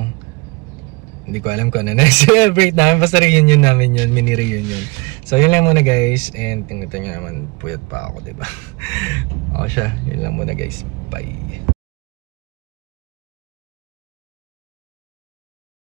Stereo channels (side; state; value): left; quieter; 27.2 dB